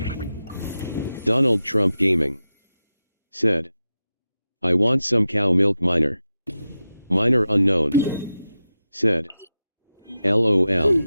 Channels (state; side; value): inverted; both; correlation -0.91